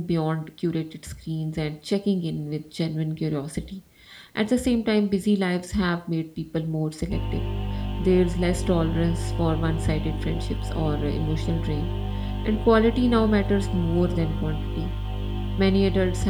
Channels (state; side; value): identical; both; correlation 1.00